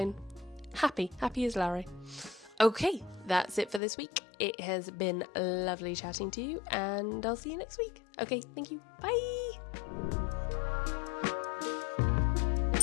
happy as Larry. Okay, that's it for this week. It has been lovely chatting to you, and I'll see you next week. Okay, thank you. Bye!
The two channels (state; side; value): drops out; right; at 3.8 s